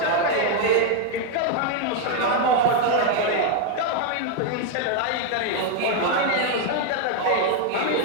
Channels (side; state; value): both; different; correlation 0.01